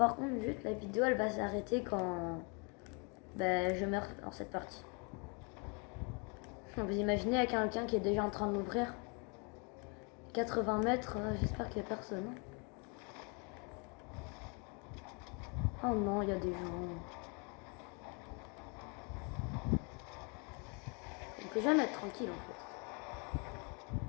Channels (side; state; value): right; quieter; 33.9 dB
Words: contre, juste la vidéo, elle va s'arrêter quand je meurs dans cette partie. Vous imaginez avec quelqu'un qui est déjà en train de m'ouvrir 80 mètres, j'espère qu'il n'y a personne. Oh non, il y a des gens. On peut jamais être tranquille en fait.